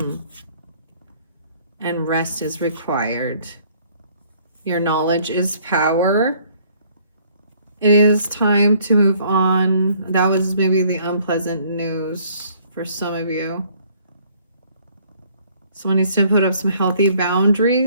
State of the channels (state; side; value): inverted; both; correlation -0.60